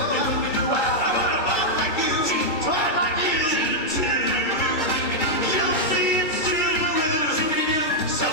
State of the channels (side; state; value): right; late; 2.3 ms